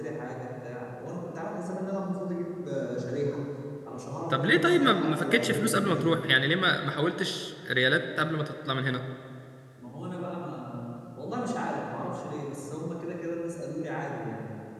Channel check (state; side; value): identical; both; correlation 1.00